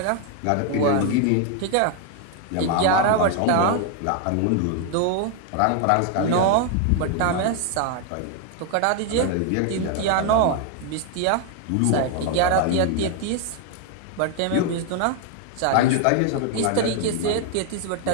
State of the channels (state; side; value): different; both; correlation 0.01